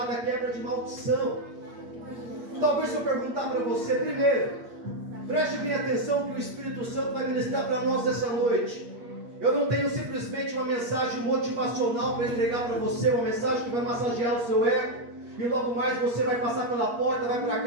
quebra de maldição. Talvez se eu perguntar para você, primeiro, preste bem atenção que o Espírito Santo vai ministrar para nós essa noite. Eu não tenho simplesmente uma mensagem motivacional para entregar para você, uma mensagem que vai massagear o seu ego, e logo mais você vai passar pela porta, vai para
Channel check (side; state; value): left; late; 8.5 ms